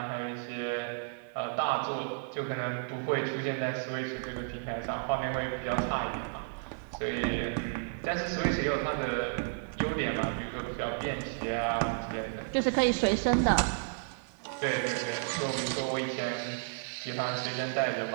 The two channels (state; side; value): silent; left; digital silence